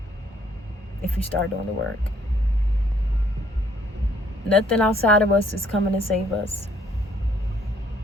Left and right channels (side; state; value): both; normal; correlation 0.64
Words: if you start doing the work. Nothing outside of us is coming to save us.